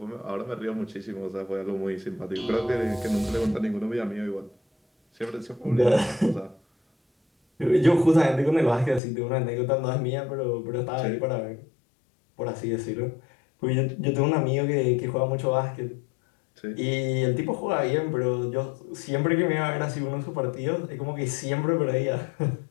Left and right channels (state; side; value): drops out; right; at 9.0 s